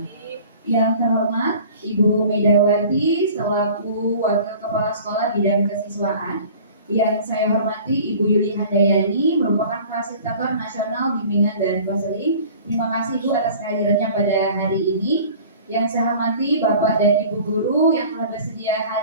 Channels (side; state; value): both; inverted; correlation -0.45